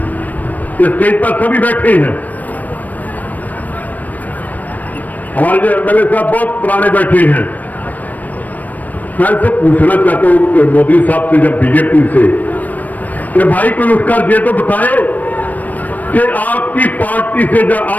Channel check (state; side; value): late; right; 0.080 ms